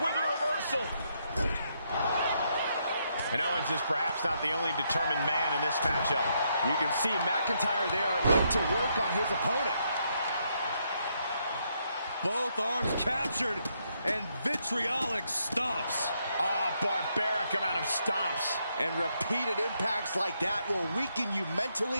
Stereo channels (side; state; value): both; inverted; correlation -0.77